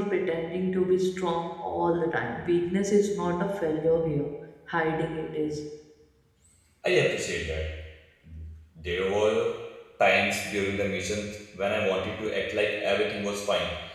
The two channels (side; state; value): both; identical; correlation 1.00